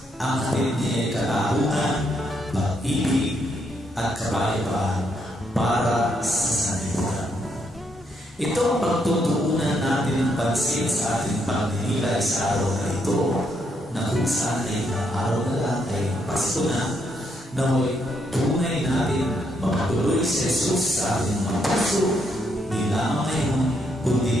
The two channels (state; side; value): normal; both; correlation 0.76